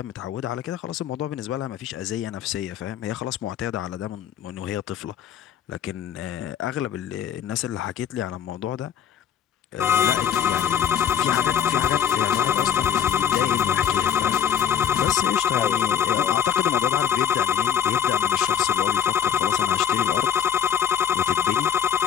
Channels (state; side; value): quieter; right; 8.8 dB